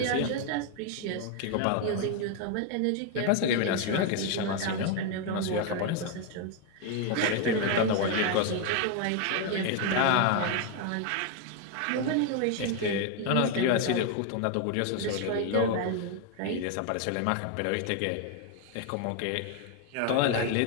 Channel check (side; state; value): both; different; correlation 0.01